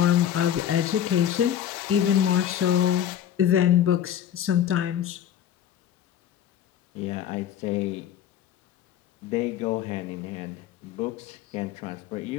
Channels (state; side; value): quieter; right; 10.2 dB